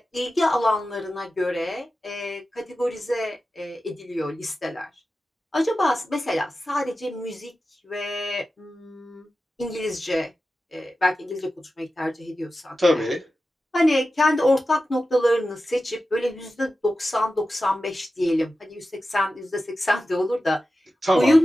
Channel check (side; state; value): both; normal; correlation 0.93